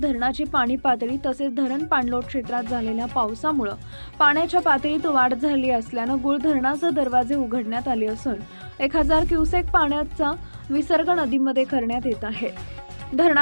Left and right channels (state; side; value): inverted; both; correlation -1.00